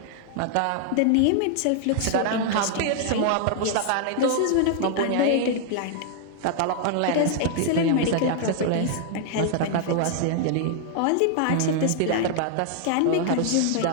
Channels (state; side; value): different; both; correlation 0.00